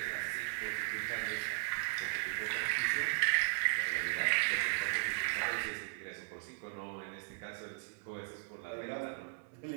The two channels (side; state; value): left; silent; digital silence